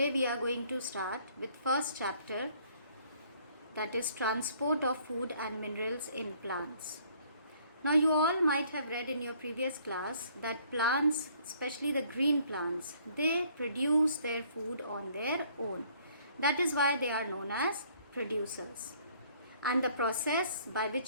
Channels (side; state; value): both; inverted; correlation -0.61